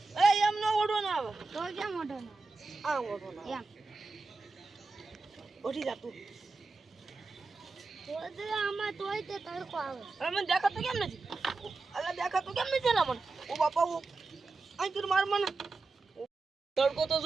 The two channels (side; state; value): left; quieter; 3.7 dB